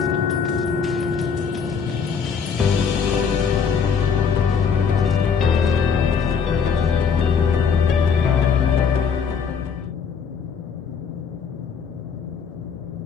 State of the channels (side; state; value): right; quieter; 6.4 dB